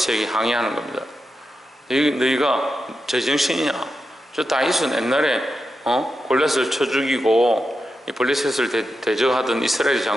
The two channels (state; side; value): normal; both; correlation 0.88